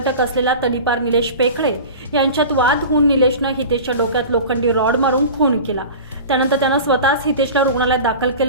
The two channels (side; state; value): both; inverted; correlation -0.34